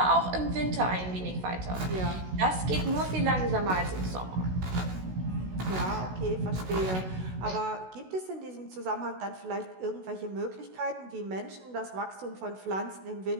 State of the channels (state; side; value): late; left; 16 ms